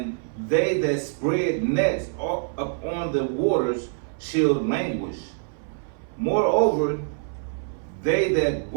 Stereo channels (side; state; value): left; silent; 60 dB below the other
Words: they that spread nets upon the waters shall languish. Moreover, they that